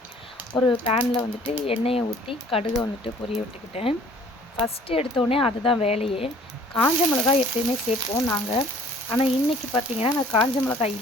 ஒரு பேனில் வந்துட்டு எண்ணெயை ஊற்றி கடுகை வந்துட்டு பொரிய விட்டுக்கிட்டேன். ஃபஸ்ட்டு எடுத்தோடனே அதுதான் வேலையே. காஞ்ச மிளகாய் எப்பயுமே சேர்ப்போம் நாங்கள், ஆனால் இன்றைக்கி பார்த்திங்கன்னா நான் காஞ்ச மிளகாய்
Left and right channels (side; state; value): both; normal; correlation 0.54